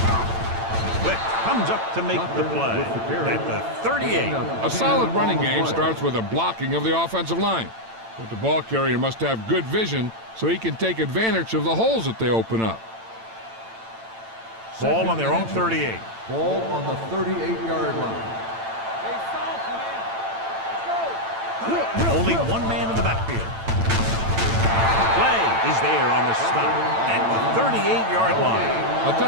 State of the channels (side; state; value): left; late; 8.9 ms